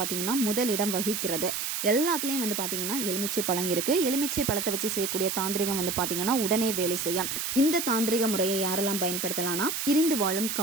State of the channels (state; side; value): noise; right; hiss, 2 dB below the sound